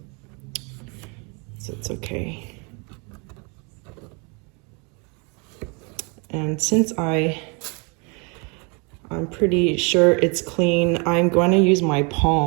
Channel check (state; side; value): quieter; left; 32.6 dB